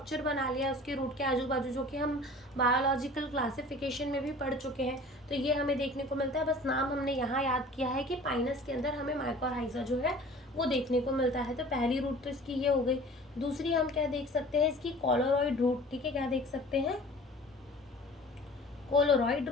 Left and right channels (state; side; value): normal; both; correlation 0.45